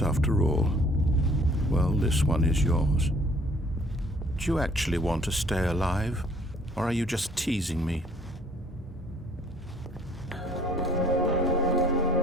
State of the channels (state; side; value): normal; both; correlation 0.58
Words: after all. Well, this one is yours. Do you actually want to stay alive? Or are you just teasing me? I